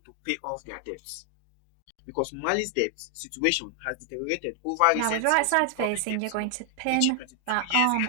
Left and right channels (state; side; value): different; both; correlation 0.00